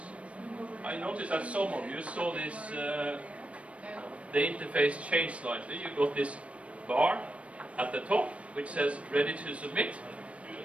I noticed that some of you saw this, the interface changed slightly. You got this bar at the top which says ready to submit.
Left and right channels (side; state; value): left; late; 0.063 ms